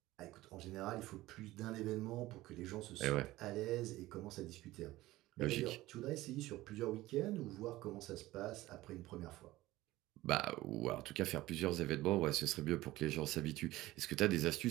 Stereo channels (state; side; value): quieter; left; 17.4 dB